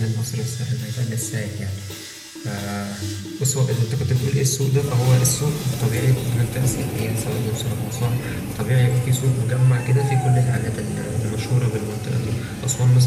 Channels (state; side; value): identical; both; correlation 1.00